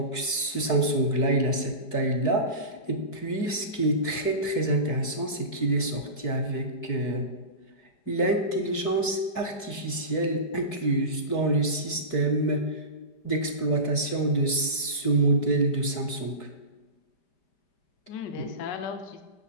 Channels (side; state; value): right; late; 4.6 ms